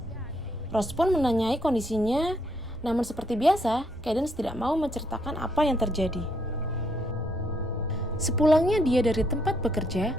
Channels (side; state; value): both; normal; correlation 0.73